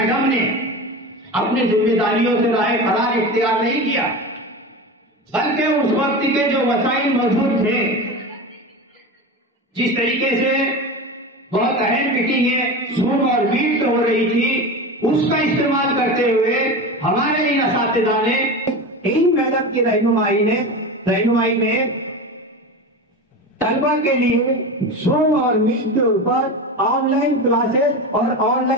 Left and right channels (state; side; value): normal; both; correlation 0.26